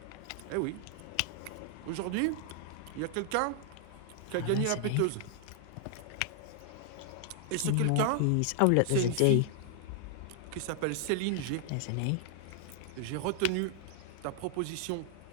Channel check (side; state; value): both; different; correlation 0.00